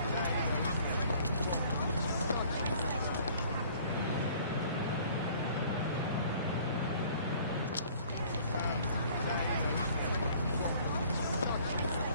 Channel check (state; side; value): inverted; both; correlation -0.54